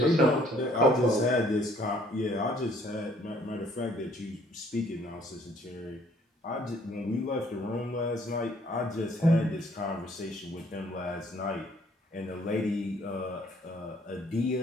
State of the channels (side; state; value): both; normal; correlation 0.62